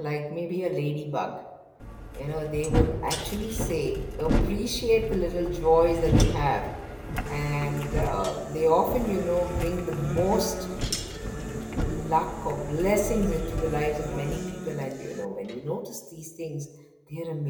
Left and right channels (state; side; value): identical; both; correlation 1.00